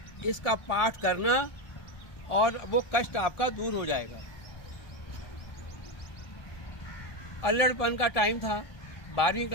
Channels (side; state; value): right; late; 1.4 ms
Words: इसका पाठ करना और वो कष्ट आपका दूर हो जाएगा। अल्लड़पन का टाइम था, 12वीं